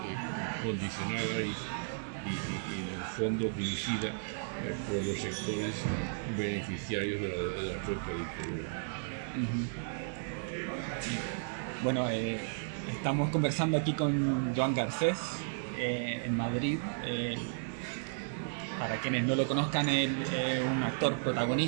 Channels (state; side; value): silent; left; digital silence